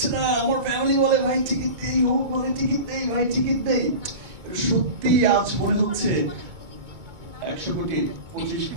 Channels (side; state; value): left; late; 2.2 ms